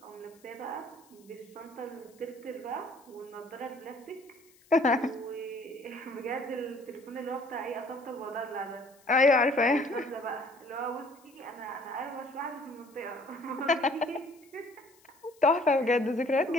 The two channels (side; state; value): left; noise; hiss, 29 dB below the sound